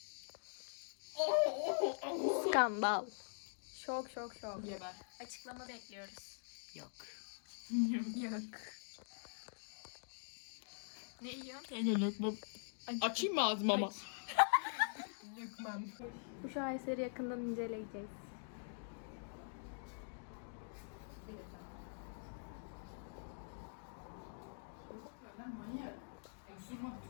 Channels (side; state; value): right; silent; digital silence